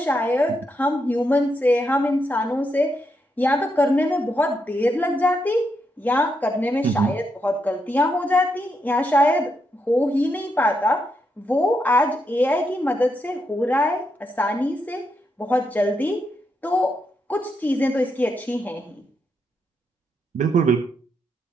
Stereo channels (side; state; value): both; normal; correlation 0.81